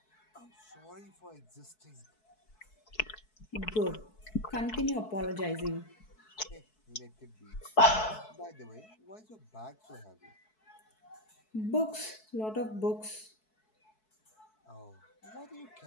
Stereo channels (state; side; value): late; right; 4.6 ms